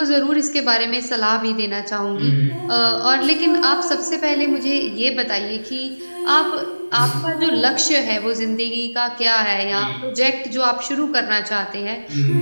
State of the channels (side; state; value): both; inverted; correlation -1.00